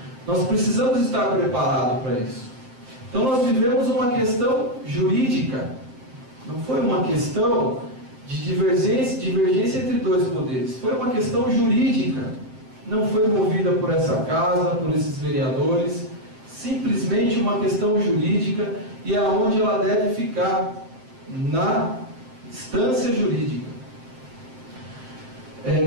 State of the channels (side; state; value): left; late; 7.7 ms